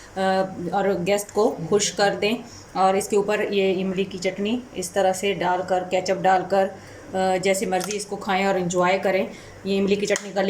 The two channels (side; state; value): both; identical; correlation 1.00